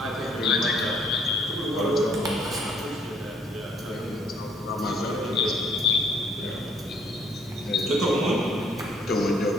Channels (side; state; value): both; normal; correlation 0.64